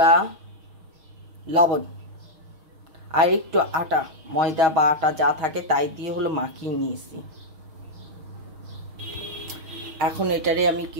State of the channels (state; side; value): late; left; 6.4 ms